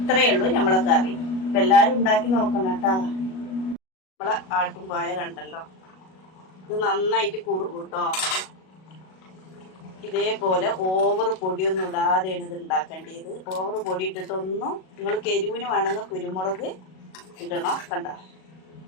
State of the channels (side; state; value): right; late; 37 ms